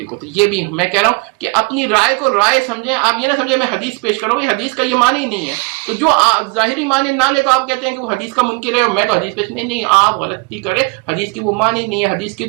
تو یہ بھی میں کہہ رہا ہوں کہ اپنی رائے کو رائے سمجھیں. آپ یہ نہ سمجھیں میں حدیث پیش کر رہا ہوں, یہ حدیث کا یہ معنی ہی نہیں ہے. تو جو ظاہری معنی نہ لے تو آپ کہتے ہیں کہ وہ حدیث کا منکر ہے اور میں تو حدیث پیش نہیں, آپ غلطی کریں. حدیث کی وہ معنی نہیں ہے, حدیث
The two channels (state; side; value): quieter; left; 31.0 dB